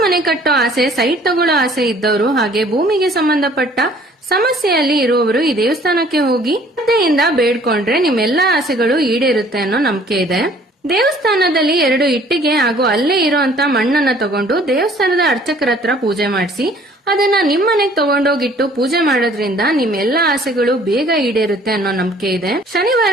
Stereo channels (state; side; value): normal; both; correlation 0.55